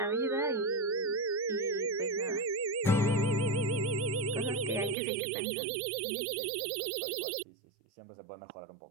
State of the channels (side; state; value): left; drops out; at 5.0 s